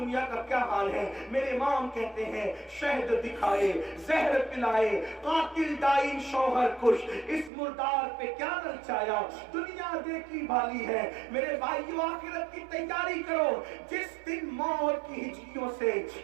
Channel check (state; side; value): drops out; left; at 7.5 s